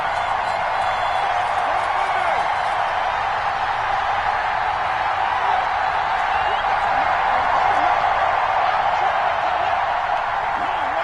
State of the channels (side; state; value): both; identical; correlation 1.00